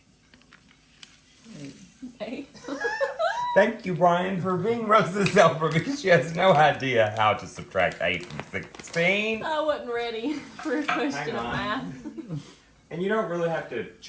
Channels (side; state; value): both; identical; correlation 1.00